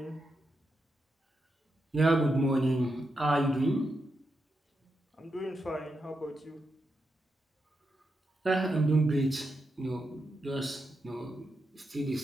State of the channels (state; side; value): normal; both; correlation 0.85